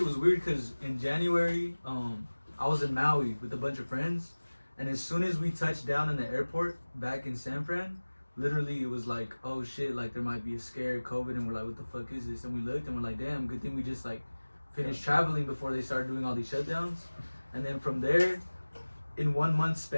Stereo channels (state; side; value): inverted; both; correlation -1.00